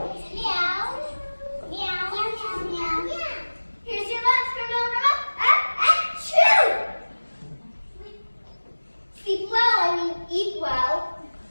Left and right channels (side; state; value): both; inverted; correlation -1.00